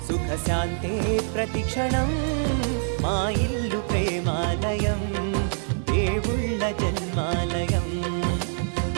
సుఖశాంతే ప్రతిక్షణం మా ఇల్లు ప్రేమాలయం దేవుళ్ళ జన్మాలయం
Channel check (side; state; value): left; silent; 62 dB below the other